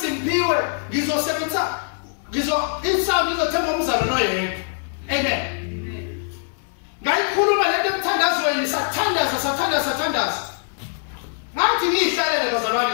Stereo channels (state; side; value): silent; right; 60 dB below the other